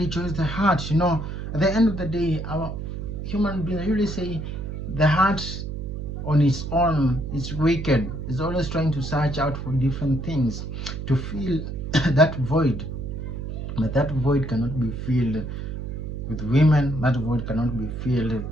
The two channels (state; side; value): noise; right; hum, 6 dB below the sound